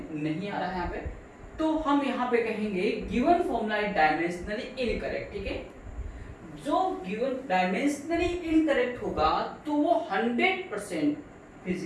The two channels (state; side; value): identical; both; correlation 1.00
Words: नहीं आ रहा है यहाँ पे, तो हम यहाँ पे कहेंगे given formula is dimensionally incorrect, ठीक है। जो गिवन डायमेंशनली इनकरेक्ट होगा तो वो 100%